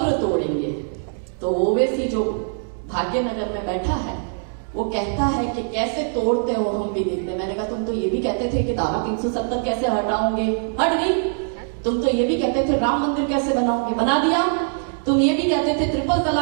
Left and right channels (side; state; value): left; silent; digital silence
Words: तोड़ेंगे। तो ओवैसी जो भाग्यनगर में बैठा है वो कहता है कि कैसे तोड़ते हो, हम भी देखते। मैंने कहा तुम तो ये भी कहते थे कि धारा 370 कैसे हटाओगे, हट गई। तुम तो ये भी कहते थे राम मंदिर कैसे बनाओगे, बना दिया। तुम ये भी कहते थे ट्रिपल